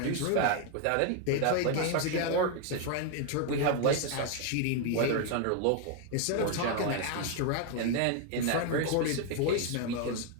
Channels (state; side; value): different; both; correlation 0.01